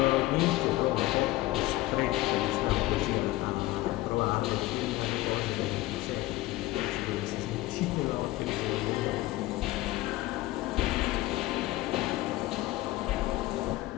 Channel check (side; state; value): right; quieter; 18.0 dB